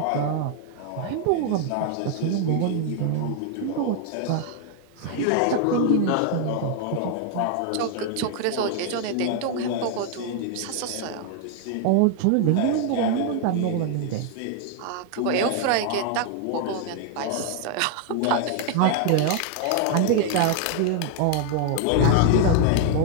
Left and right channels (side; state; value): both; different; correlation 0.00